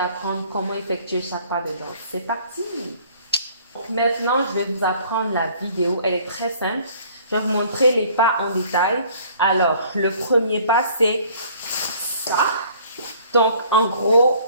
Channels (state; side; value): inverted; both; correlation -0.55